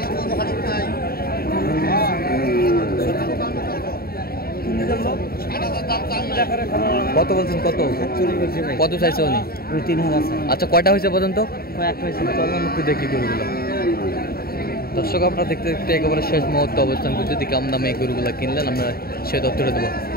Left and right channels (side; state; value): right; late; 0.44 ms